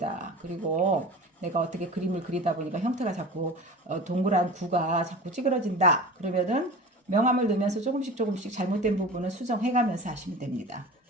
그리고 내가 어떻게 그림을 그리다 보니까 형태가 자꾸 동그란 구가 자꾸 찌그러진다. 그러면은 명암을 넣으면서 조금씩 잘못된 부분은 수정해가면서 하시면 됩니다.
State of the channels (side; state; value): both; normal; correlation 0.35